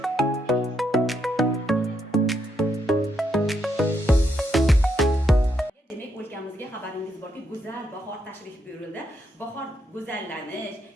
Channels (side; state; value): both; normal; correlation 0.78